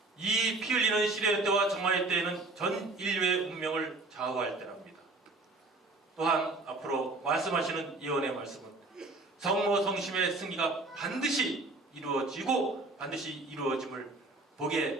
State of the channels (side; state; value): left; quieter; 3.2 dB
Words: 이 피 흘리는 시련의 때와 정화의 때에는 전 인류의 운명을 좌우할 때랍니다. 또한 앞으로 말씀하시는 예언의 말씀은 성모 성심의 승리가 반드시 이루어지고 반드시 이루어짐을 보게